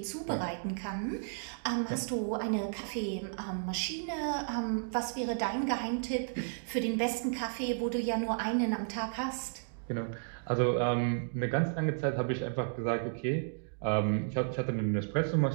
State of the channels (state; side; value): silent; left; digital silence